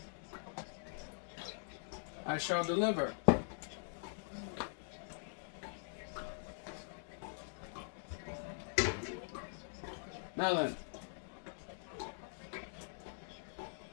I shall deliver. Now then,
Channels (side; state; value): right; silent; digital silence